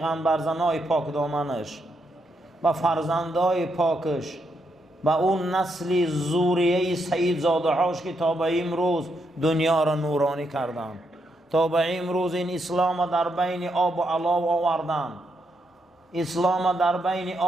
زنهای پاک دامنش و فرزندای پاکش و اون نسل زوریه سید زاده هاش که تا به امروز دنیا را نورانی کردن، تا به امروز این اسلام در بین آب و علاب آوردن، اسلام در بین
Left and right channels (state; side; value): normal; both; correlation 0.79